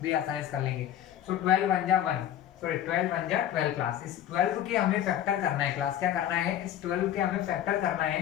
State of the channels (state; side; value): quieter; right; 11.0 dB